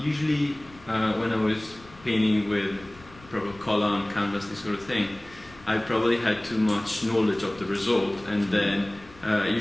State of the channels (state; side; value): noise; left; rumble, 23 dB below the sound